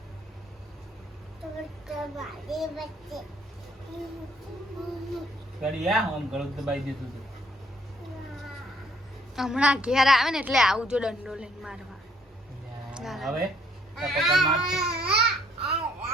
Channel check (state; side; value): normal; both; correlation 0.65